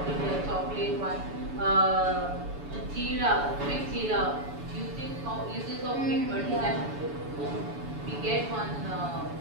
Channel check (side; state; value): left; late; 7.0 ms